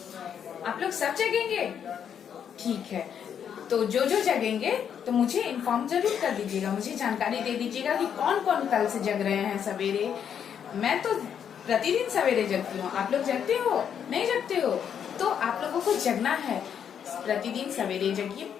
आप लोग सब जगेंगे? ठीक है। तो जो जगेंगे तो मुझे इन्फॉर्म जरूर कर दीजिएगा, मुझे जानकारी दे दीजिएगा कि कौन कौन कल से जग रहे हैं सवेरे। मैं तो प्रतिदिन सवेरे जगती हूँ। आप लोग जगते हो? नहीं जगते हो? तो आप लोगों को जगना है, प्रतिदिन सवेरे जगिए।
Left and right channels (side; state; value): right; quieter; 8.3 dB